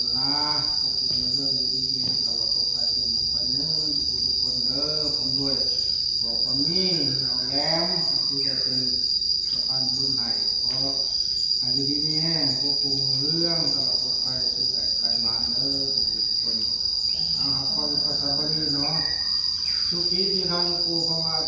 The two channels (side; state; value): left; noise; hum, 24 dB below the sound